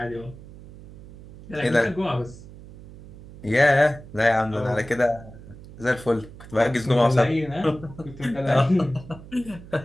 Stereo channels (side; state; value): right; noise; hum, 18 dB below the sound